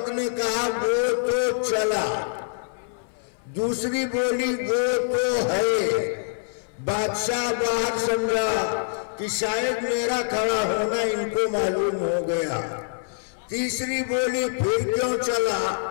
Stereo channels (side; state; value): right; silent; 58 dB below the other